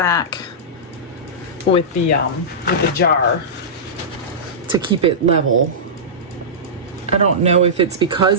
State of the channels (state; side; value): normal; both; correlation -0.16